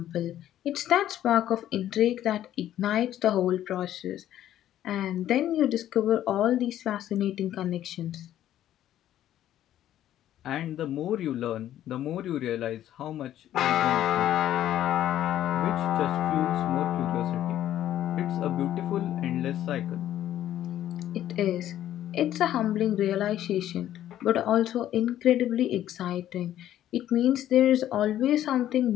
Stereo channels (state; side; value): quieter; right; 12.1 dB